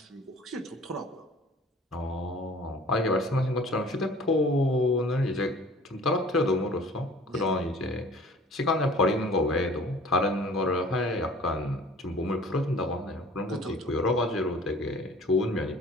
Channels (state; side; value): normal; both; correlation 0.48